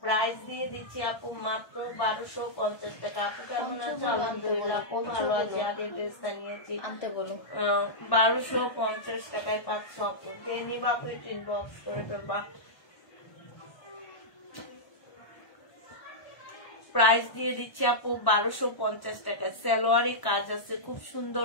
প্রাইস দিয়ে দিচ্ছি আপু মাত্র 1250 টাকা। আপু কেমন আছো? আলহামদুলিল্লাহ আপু ভালো আছি। আগে ড্রেসটা নিয়েছি, আনতে বলো। 1250 টাকায় পাচ্ছ আপু। যে নিবা ইনবক্স করে ফেলবা। প্রাইস দিয়ে দিচ্ছি আপু 1250 টাকা। সালোয়ারে কাজ আছে, খুব সুন্দর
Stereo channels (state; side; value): late; right; 1.1 ms